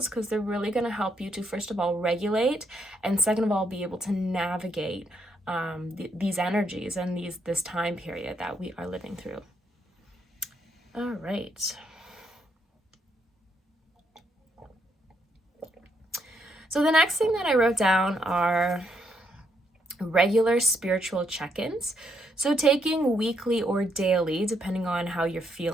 because they're really going to help you to, first of all, regulate, and second of all, be able to navigate these energies and this time period that we are living through. All right. So the next thing that I wrote down are regular spiritual check-ins. So taking weekly or daily, depending on how you're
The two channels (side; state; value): both; normal; correlation 0.75